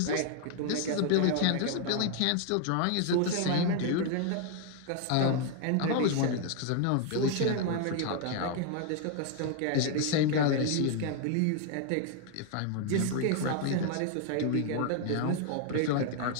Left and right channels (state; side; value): different; both; correlation 0.00